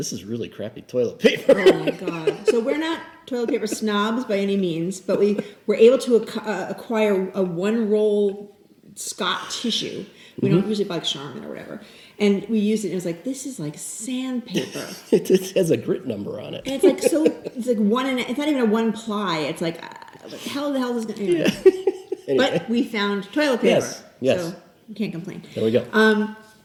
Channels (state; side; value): identical; both; correlation 1.00